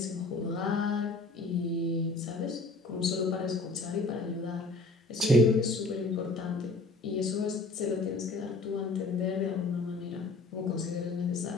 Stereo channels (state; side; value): quieter; right; 3.3 dB